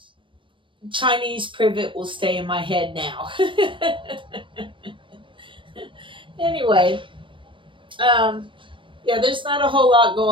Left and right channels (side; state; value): left; late; 0.25 ms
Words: Chinese privet will stay in my head now. Anyway, yeah, there's not a whole lot